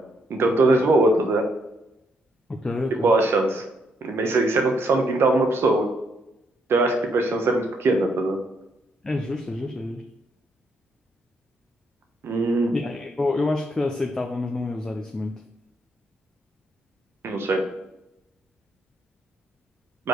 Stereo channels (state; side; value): normal; both; correlation 0.74